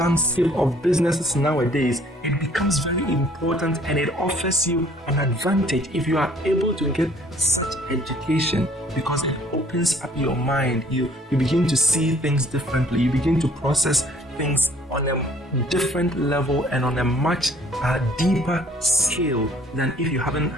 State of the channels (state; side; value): normal; both; correlation 0.57